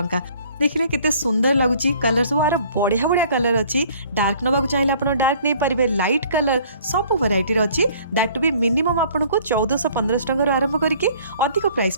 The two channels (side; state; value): both; inverted; correlation -0.55